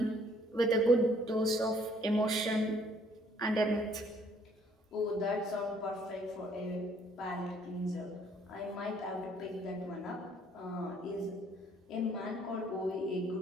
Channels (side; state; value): both; normal; correlation 0.62